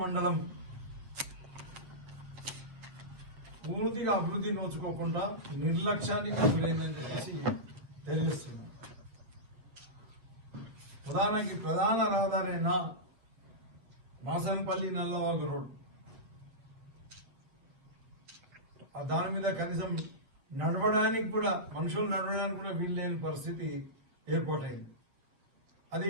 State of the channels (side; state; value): left; late; 7.7 ms